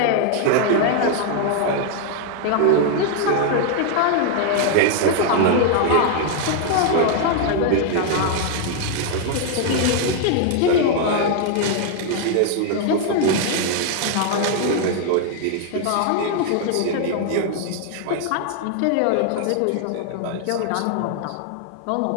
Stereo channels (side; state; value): both; different; correlation 0.00